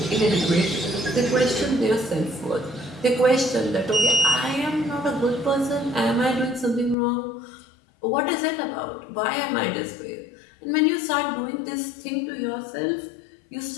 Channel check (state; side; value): drops out; right; at 7.0 s